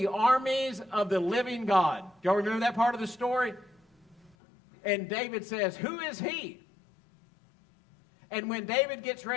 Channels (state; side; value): drops out; right; at 4.4 s